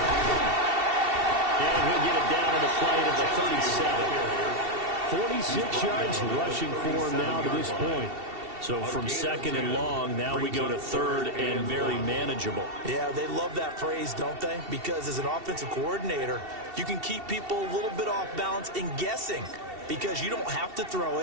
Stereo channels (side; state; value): left; late; 2.7 ms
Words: And he'll get it down to the play to the 37. 46 yards rushing for him now to this point. So from 2nd and long, now we go to 3rd and very manageable. Yeah, they love that phrase, don't they? Because as an offensive coordinator, you can keep people a little bit off balance and guessing because you don't have to throw